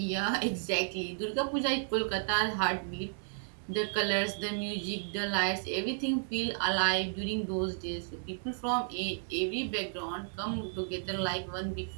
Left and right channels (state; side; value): silent; left; digital silence